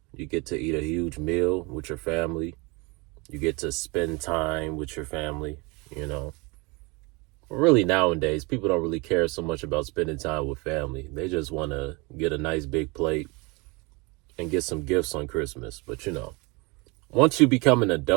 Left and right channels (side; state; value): left; quieter; 27.6 dB